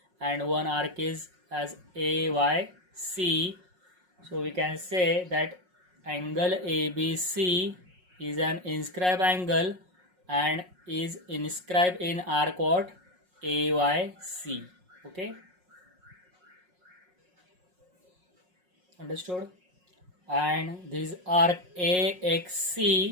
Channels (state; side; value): late; left; 5.5 ms